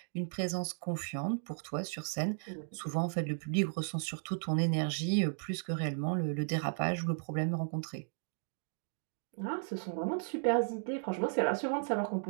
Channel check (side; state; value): left; silent; digital silence